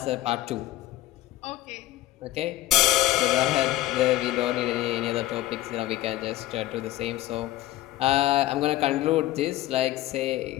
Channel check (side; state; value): right; quieter; 15.1 dB